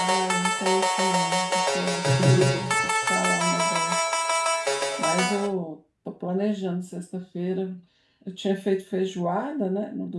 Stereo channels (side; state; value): both; identical; correlation 1.00